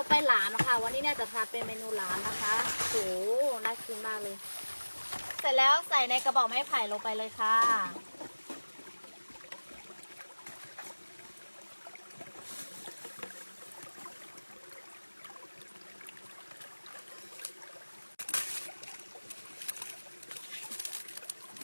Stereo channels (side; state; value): both; inverted; correlation -1.00